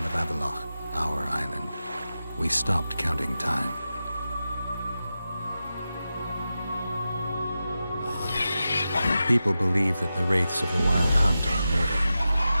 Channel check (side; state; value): both; inverted; correlation -0.92